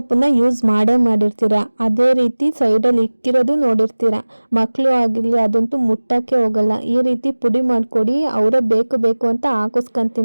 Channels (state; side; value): inverted; both; correlation -1.00